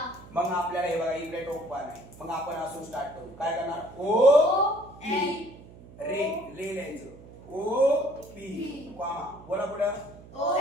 मग आपल्याला हे बघा इकडे टोक बाण आहे. मग आपण असून स्टार्ट करू. काय करणार? ओ पी. रे लिहायचं. O P comma. बोला पुढं. O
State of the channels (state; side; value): noise; right; hum, 19 dB below the sound